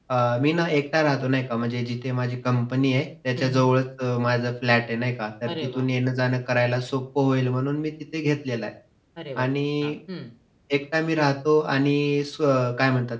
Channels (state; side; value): identical; both; correlation 1.00